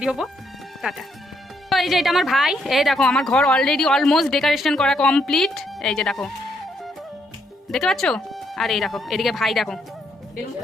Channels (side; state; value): both; normal; correlation 0.75